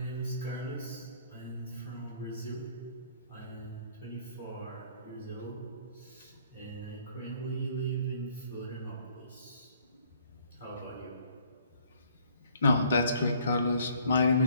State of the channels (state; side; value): inverted; both; correlation -0.60